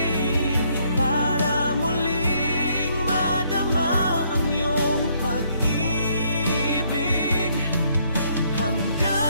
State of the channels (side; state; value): both; inverted; correlation -0.69